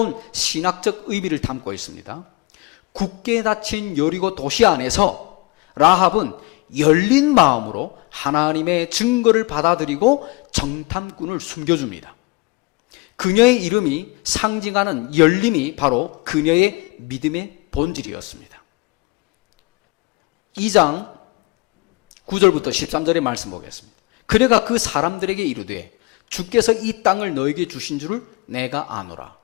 신학적 의미를 담고 있습니다. 굳게 닫힌 여리고 도시 안에서 라합은 열린 마음으로 하나님의 증거를 받아들이고 정탐꾼을 숨겨줍니다. 그녀의 이름이 상징하는 열림이 바로 그녀의 믿음의 본질이었습니다. 2장 9절부터 13절의 말씀 보겠습니다. 그래가 그 사람들에게 이르되 주께서 이 땅을 너에게 주신 줄을 내가 아노라.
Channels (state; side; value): quieter; right; 25.1 dB